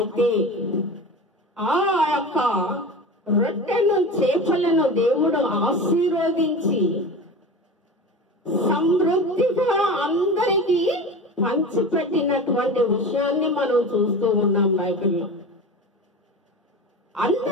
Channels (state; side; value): normal; both; correlation 0.31